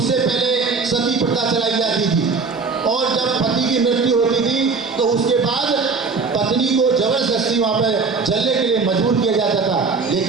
पहले सती प्रथा चलाई जाती थी और जब पति की मृत्यु होती थी तो उसके बाद पत्नी को जबरदस्ती वहां पर जलने के लिए मजबूर किया जाता था।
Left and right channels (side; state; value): left; quieter; 4.6 dB